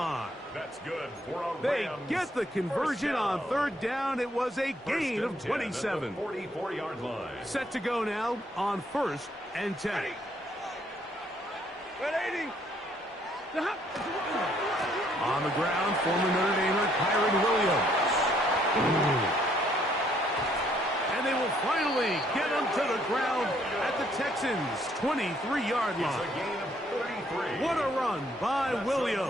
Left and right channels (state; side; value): normal; both; correlation 0.67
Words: That's good for a They get the conversion on 3rd down. It was a gain of 27. 44-yard line. Set to go now on 1st and 10. On the ground, former Notre Damer Kyren Williams. And they will finally get him to the ground at the Texans' 23-yard line. What a run by